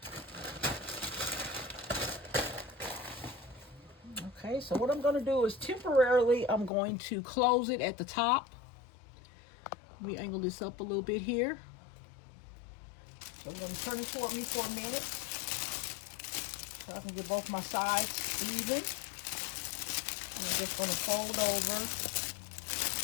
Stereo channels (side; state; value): right; drops out; at 6.7 s